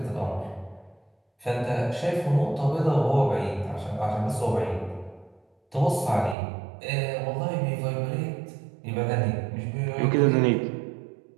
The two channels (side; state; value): left; drops out; at 6.4 s